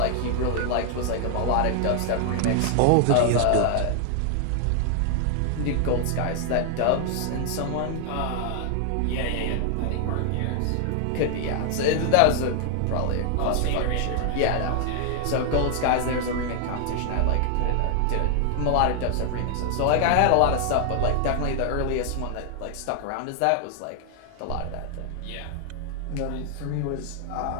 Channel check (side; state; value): both; different; correlation 0.00